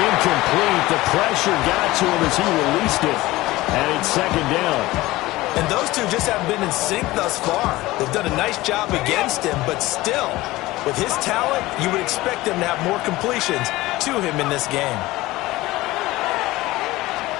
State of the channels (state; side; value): quieter; right; 18.6 dB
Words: incomplete. The pressure got to him as he released it. And it's 2nd down. And those two just haven't been in sync thus far. They've done a nice job against him, but still, with his talent, you would expect him to have more completions to him in this game.